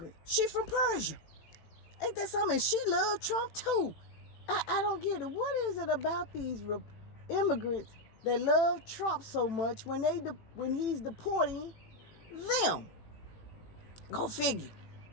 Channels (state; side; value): late; right; 18 ms